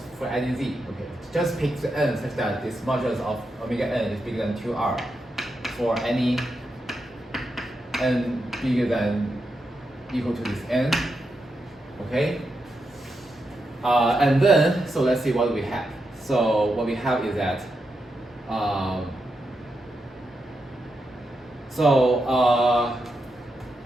for any z. Okay, just pick the n such that this modulus of omega n is bigger than 2r for any n bigger than equal to this n. Okay. And then, so let's see what we have. So what we have is that, so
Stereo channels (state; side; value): normal; both; correlation 0.86